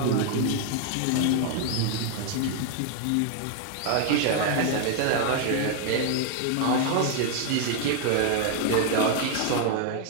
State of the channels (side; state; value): both; different; correlation 0.00